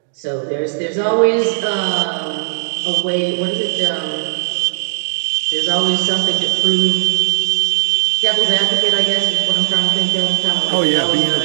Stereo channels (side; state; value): left; silent; digital silence